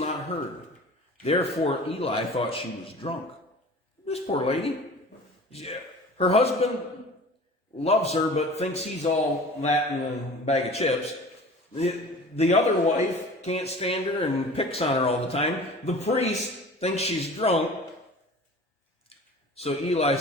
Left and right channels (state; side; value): normal; both; correlation 0.41